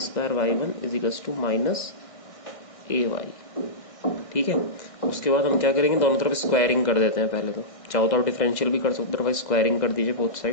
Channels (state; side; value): late; right; 1.6 ms